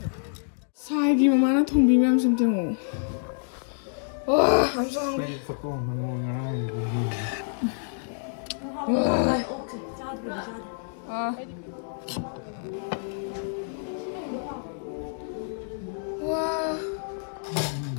Sai gì mà nó thùng bì mềm xem chừng. Wow, I'm so hungry.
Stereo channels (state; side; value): silent; right; digital silence